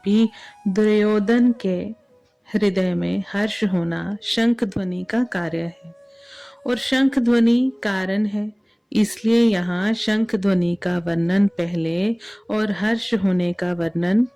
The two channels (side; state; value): both; identical; correlation 1.00